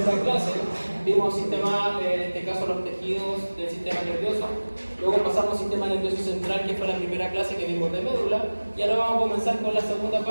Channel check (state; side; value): inverted; both; correlation -1.00